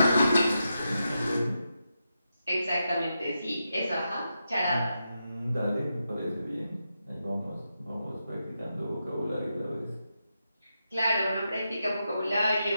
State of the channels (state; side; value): inverted; both; correlation -0.87